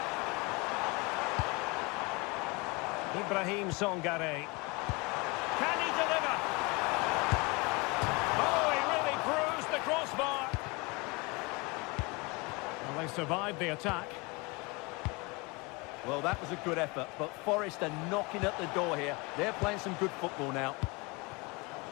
Ibrahim Songare. Can he deliver? Oh, he really bruised the crossbar. Well, they survived the attack. Well, that was a good effort, but Forest are knocking at the door here. They're playing some good football now.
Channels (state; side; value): quieter; right; 27.1 dB